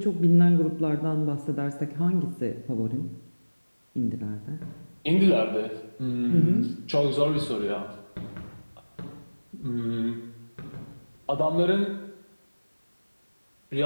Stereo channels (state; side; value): inverted; both; correlation -1.00